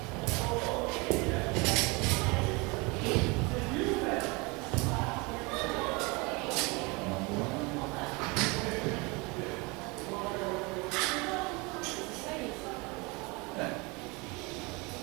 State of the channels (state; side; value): quieter; left; 27.2 dB